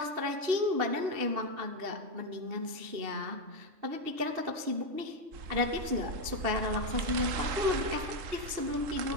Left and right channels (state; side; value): late; left; 2.8 ms